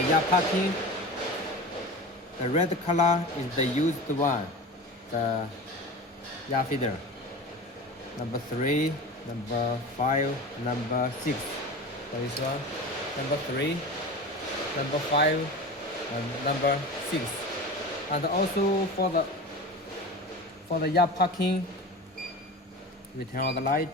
yarn packing, the red color is the used one, the yarn feeder. Number 3, number 5, number 6. For this one, number 3, number 5, and number 6. And also for the yarn packing, we turn on the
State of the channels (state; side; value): normal; both; correlation 0.32